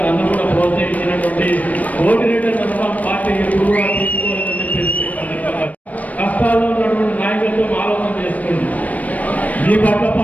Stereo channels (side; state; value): right; late; 0.072 ms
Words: నన్ను కూడా ప్రోత్సహించినటువంటి కోటిరెడ్డి అన్న పార్టీ ఎప్పుడు కూడా తీసుకోలేదని చెప్పేసి కష్టాల్లో ఉన్నటువంటి నాయకులతో ఆలోచన చేసుకోండి. మీ పట్ల